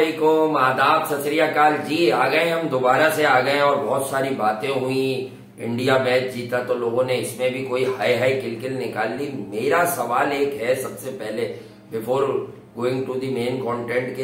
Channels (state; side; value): identical; both; correlation 1.00